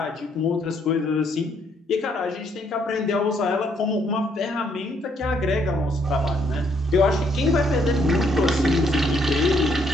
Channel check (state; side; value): normal; both; correlation 0.70